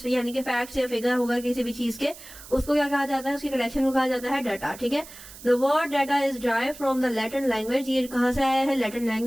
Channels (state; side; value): noise; right; hiss, 17 dB below the sound